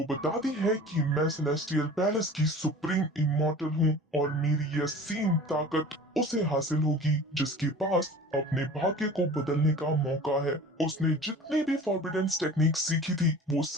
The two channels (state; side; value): normal; both; correlation 0.41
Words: बताती है कि मैं सेलेस्टियल पैलेस की सुप्रीम इमॉर्टल हूँ और मेरी यह असीम ताकत उसे हासिल होगी जिसके पास अपने भाग्य को बदलने का मौका है। उसने जितनी भी फॉरबिडन टेक्निक सीखी थी वो